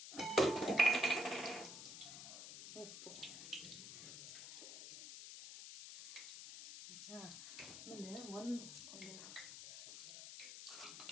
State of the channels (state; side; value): noise; left; hiss, 10 dB below the sound